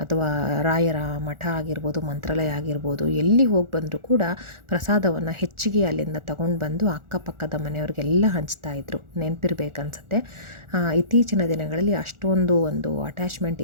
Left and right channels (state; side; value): late; left; 1.4 ms